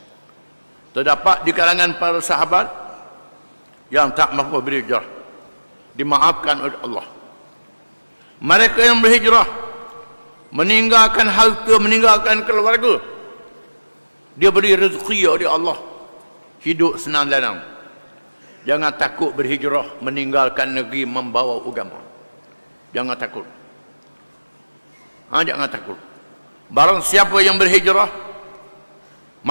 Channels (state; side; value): inverted; both; correlation -1.00